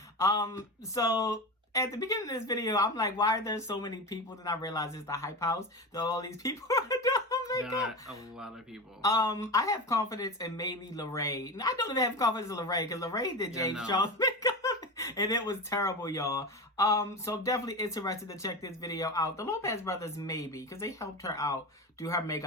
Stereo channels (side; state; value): both; normal; correlation 0.24